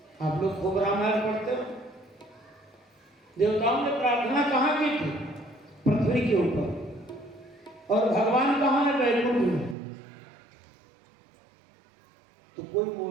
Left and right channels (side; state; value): left; drops out; at 9.8 s